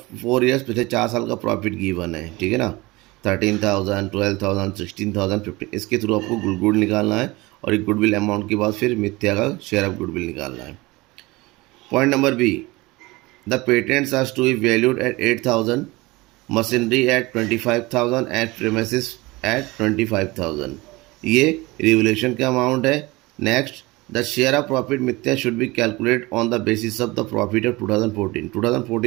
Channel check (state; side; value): quieter; left; 22.1 dB